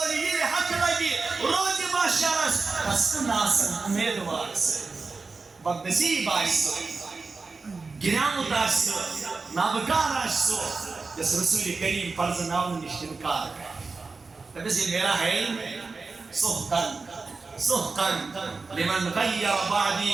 یہ حق لگی روز باشرس تس ناسن امیدوار سے بدنصیب آئیسو گرامت آشتو نابکار آشتو جس رسول کریم فرض نام نشتنکار تبس یہ میرا ہے سحقن لمن غیر بعدی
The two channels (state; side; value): quieter; left; 4.2 dB